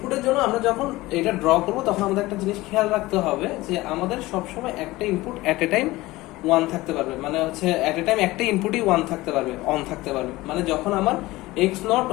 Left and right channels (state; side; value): quieter; right; 19.2 dB